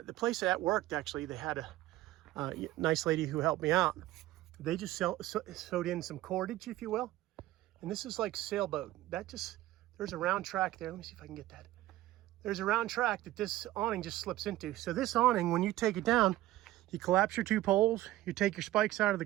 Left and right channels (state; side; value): quieter; left; 15.9 dB